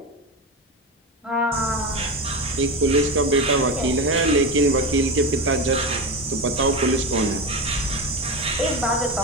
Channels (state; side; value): normal; both; correlation 0.20